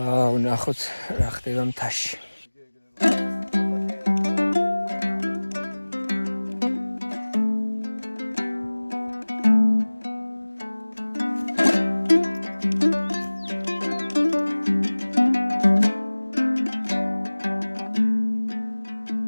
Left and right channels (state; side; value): inverted; both; correlation -1.00